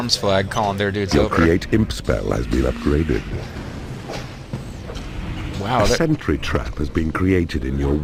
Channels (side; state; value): both; identical; correlation 1.00